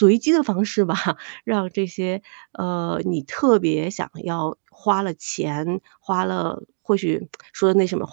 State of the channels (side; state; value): left; silent; digital silence